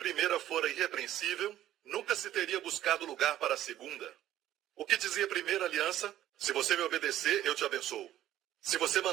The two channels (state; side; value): quieter; left; 12.9 dB